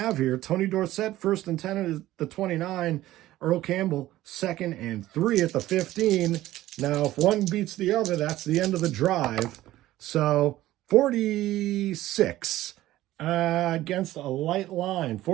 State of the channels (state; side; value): quieter; left; 15.3 dB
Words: here. Tony Dorsett, 1st and 10 at the 29. Earl Campbell, 2nd and 3 at the 15. Now, if one beats the other, that's the end of the drive. So, 46 against a light line.